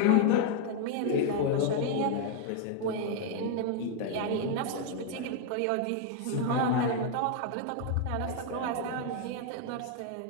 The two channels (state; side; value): different; both; correlation 0.00